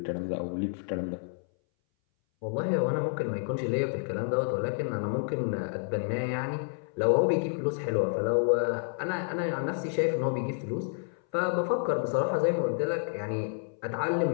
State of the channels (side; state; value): right; silent; 58 dB below the other